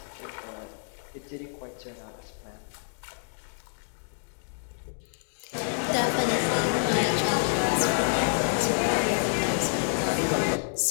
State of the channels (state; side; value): silent; right; digital silence